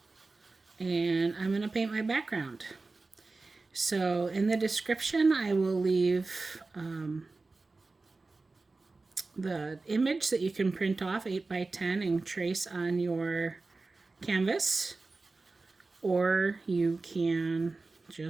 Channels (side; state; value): left; quieter; 3.6 dB